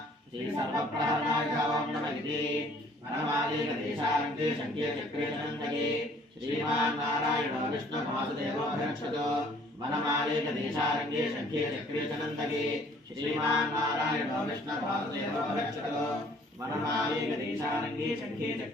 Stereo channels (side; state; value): both; normal; correlation 0.57